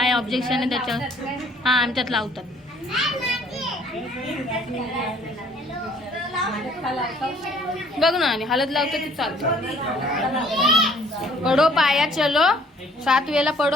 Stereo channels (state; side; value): normal; both; correlation 0.58